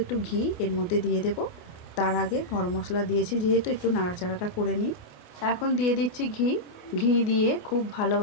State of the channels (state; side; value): late; right; 28 ms